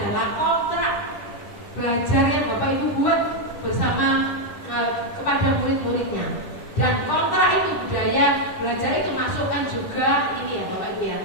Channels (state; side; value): late; right; 10 ms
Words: kontrak belajar yang Bapak Ibu buat bersama kepada murid-muridnya. Dan kontrak itu budaya belajar itu masukkan juga ini ya Bapak Ibu ya,